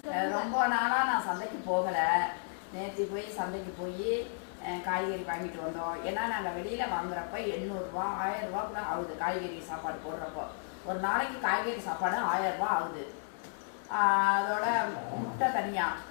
ரொம்ப நாளா நான் சந்தைக்கு போகல. நேற்று போய் சந்தைக்கு போய் காய்கறி வாங்கிட்டு வந்தோம். ஏன்னா நாங்கள் வெளியில வாங்குறப்ப 800 ரூபா 1000 ரூபா கூட ஆகுது. காய்கறி சாப்பாடு போடுறப்போ ஒரு நாளைக்கு காய்கறி சாப்பாடு 1000 ரூபா ஆகுது. அதோட முட்டை தனியா,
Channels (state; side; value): silent; right; digital silence